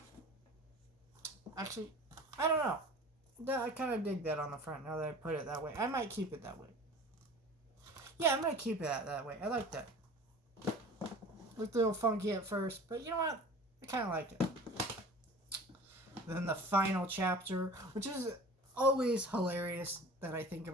Actually, I don't know. I kind of dig that on the front now that I put it that way. I might keep it that way. Yeah, I'm going to keep it that way. I like that. Looked a little funky at first, but you know what? I kind of like it. Then the final chapter, which is always hilarious that I think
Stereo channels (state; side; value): normal; both; correlation 0.41